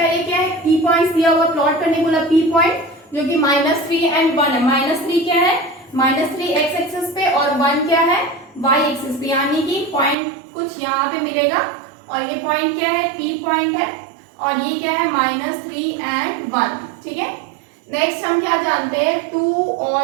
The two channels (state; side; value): drops out; left; at 10.2 s